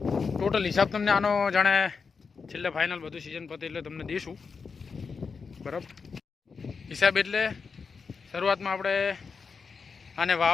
ટોટલ હિસાબ તમને આનો જાણે છેલ્લે ફાઇનલ બધું સિઝન પતે એટલે તમને દઈશું. બરાબર. હિસાબ એટલે શરૂઆતમાં આપણે આને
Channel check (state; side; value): quieter; right; 5.3 dB